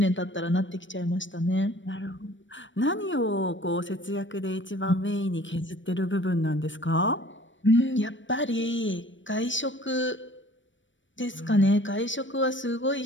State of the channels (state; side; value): late; right; 0.55 ms